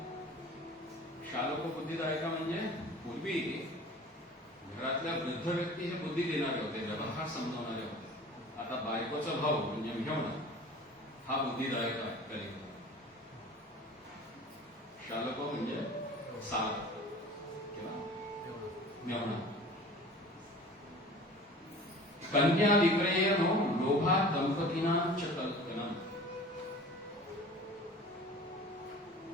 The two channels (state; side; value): normal; both; correlation 0.42